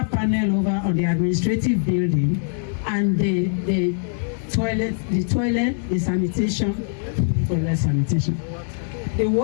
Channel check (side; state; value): right; silent; 63 dB below the other